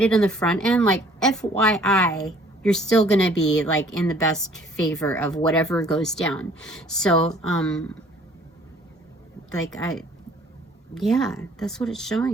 on the front end, like, FYI, you're still gonna be like in the best favor of whatever goes down. So like, yeah, that's what it's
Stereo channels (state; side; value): normal; both; correlation 0.57